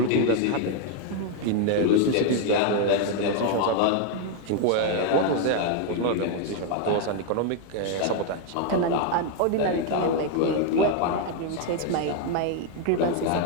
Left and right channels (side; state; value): both; different; correlation 0.01